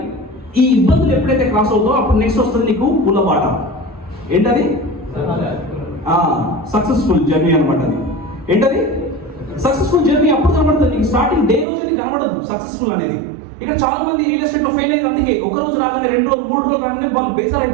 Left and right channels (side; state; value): left; drops out; at 11.7 s